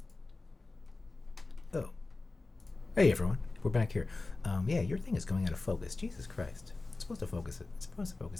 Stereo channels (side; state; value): right; quieter; 3.4 dB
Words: Oh. Hey, everyone. We're back here. Yeah, your thing is going out of focus. Jesus Christ. It's supposed to focus. It's supposed to